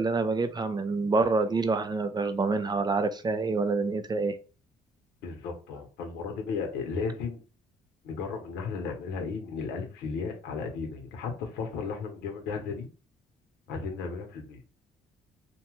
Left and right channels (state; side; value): normal; both; correlation 0.62